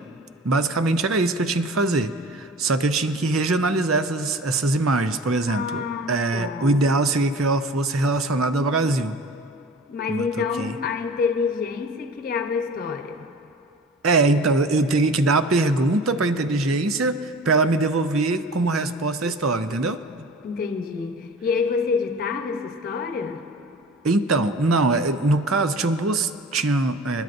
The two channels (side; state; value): both; normal; correlation 0.41